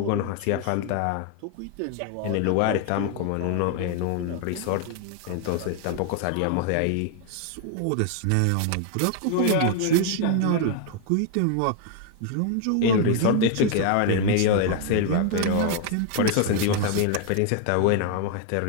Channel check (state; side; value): different; both; correlation 0.01